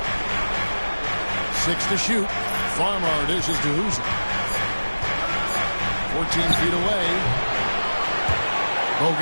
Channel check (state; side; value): inverted; both; correlation -1.00